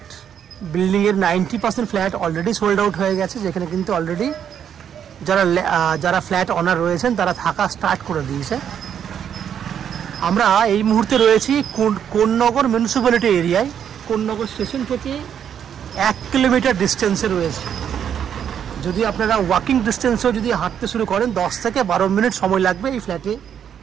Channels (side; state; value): left; quieter; 8.7 dB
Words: Building এর 90% ফ্ল্যাট অলরেডি সোল্ড আউট হয়ে গেছে, যেখানে কিন্তু অলরেডি যারা ফ্ল্যাট ওনার রয়েছেন তারা থাকা স্টার্ট করে দিয়েছে। আমরা এই মুহূর্তে রয়েছি কোন্নগর মিউনিসিপ্যালিটি এরিয়ায়। কোন্নগর স্টেশন থেকে 1 কিলোমিটার ডিস্টেন্সে রয়েছে। যদি আপনারা ওয়াকিং ডিস্টেন্সেও যদি হাঁটতে শুরু করেন 10 থেকে 12 মিনিট সময় লাগবে এই ফ্ল্যাটে